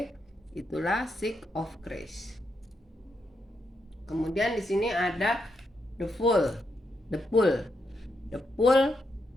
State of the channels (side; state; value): both; normal; correlation 0.82